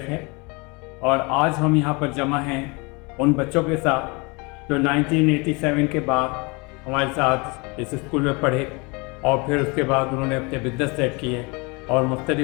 है और आज हम यहाँ पर जमा हैं उन बच्चों के साथ जो 1987 के बाद हमारे साथ इस स्कूल में पढ़े और फिर उसके बाद उन्होंने अपने बिजनेस सेट किए और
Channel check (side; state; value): right; quieter; 28.6 dB